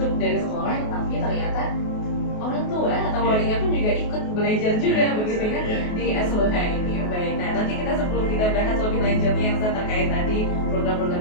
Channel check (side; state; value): right; late; 28 ms